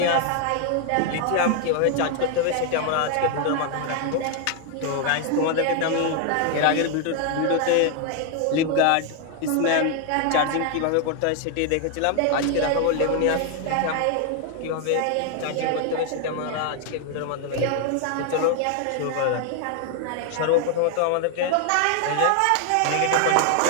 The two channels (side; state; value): both; different; correlation 0.00